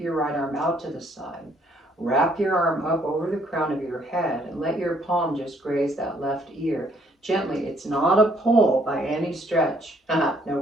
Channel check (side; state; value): both; normal; correlation 0.66